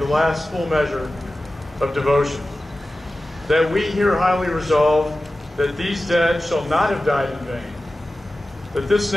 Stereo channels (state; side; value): normal; both; correlation 0.95